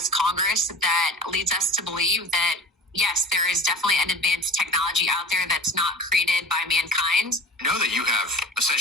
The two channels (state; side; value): normal; both; correlation 0.39